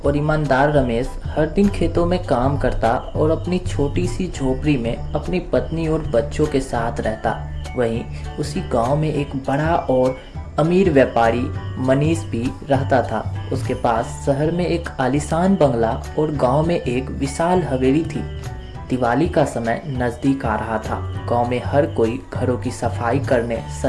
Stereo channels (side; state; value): both; identical; correlation 1.00